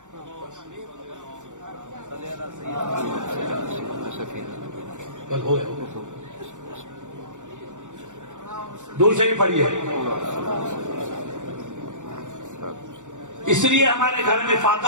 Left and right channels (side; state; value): left; late; 0.85 ms